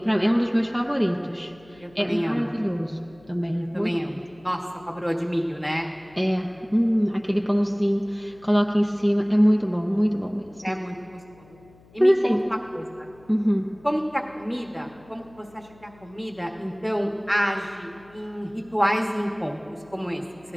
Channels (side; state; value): left; noise; hum, 26 dB below the sound